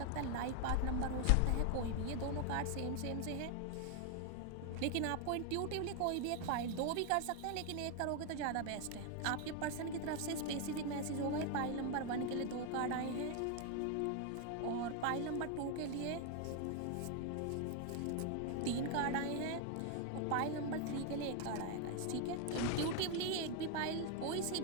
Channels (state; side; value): different; both; correlation 0.01